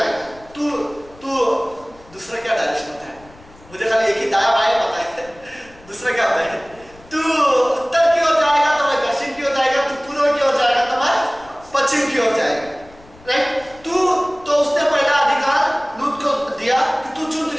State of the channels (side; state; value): left; noise; rumble, 24 dB below the sound